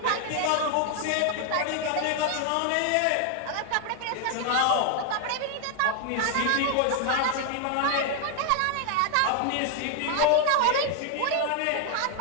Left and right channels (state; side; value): different; both; correlation 0.00